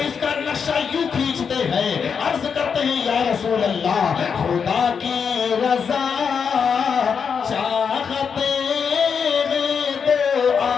اس کا نقشہ یوں کھینچتے ہیں، عرض کرتے ہیں یا رسول اللہ خدا کی رضا چاہتے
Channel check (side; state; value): right; quieter; 6.4 dB